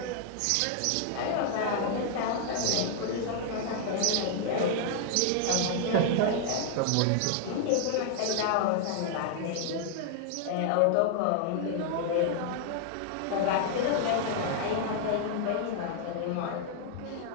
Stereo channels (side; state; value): both; different; correlation 0.00